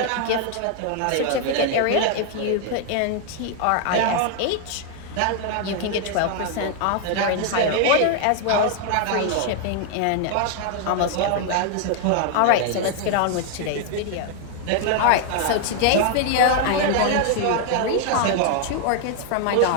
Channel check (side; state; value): both; different; correlation 0.00